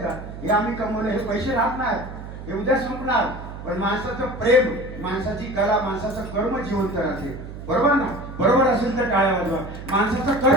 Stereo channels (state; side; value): noise; right; hum, 11 dB below the sound